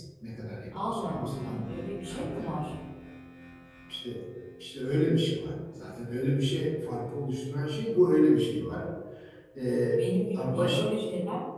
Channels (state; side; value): identical; both; correlation 1.00